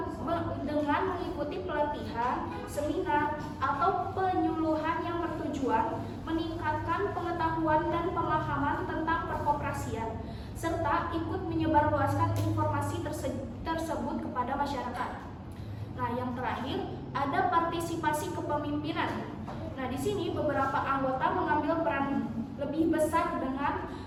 mengikuti pelatihan, seminar, atau penyuluhan yang bertujuan meningkatkan pengetahuan dan pemahaman tentang perkoperasian, serta ikut menyebarluaskan informasi tersebut kepada masyarakat. Nah, yang terakhir ada partisipasi kepemimpinan. Nah, di sini beberapa anggota mengambil peran lebih besar dengan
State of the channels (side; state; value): both; identical; correlation 1.00